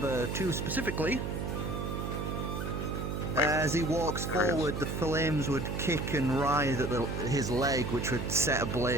2 specifically. As he walks forward, the flames would kick and writhe at his leg, which would set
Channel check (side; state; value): right; noise; hum, 3 dB below the sound